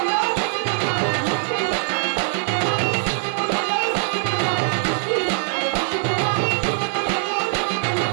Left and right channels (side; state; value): left; silent; digital silence